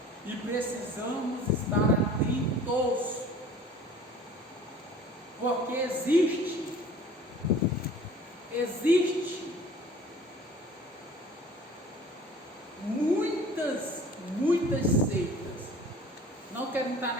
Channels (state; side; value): normal; both; correlation 0.47